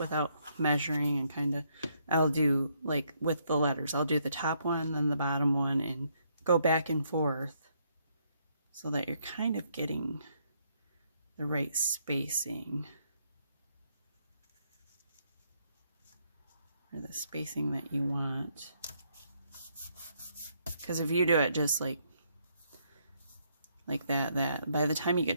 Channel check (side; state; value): both; inverted; correlation -0.73